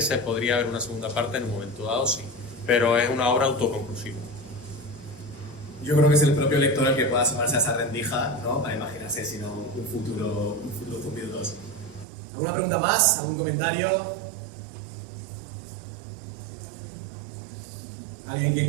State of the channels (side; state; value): left; drops out; at 12.1 s